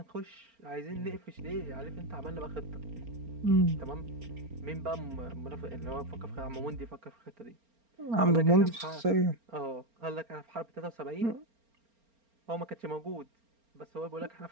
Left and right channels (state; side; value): late; left; 4.4 ms